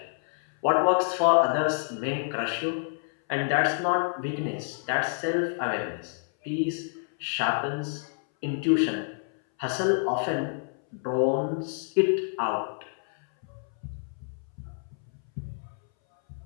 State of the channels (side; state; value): right; silent; 59 dB below the other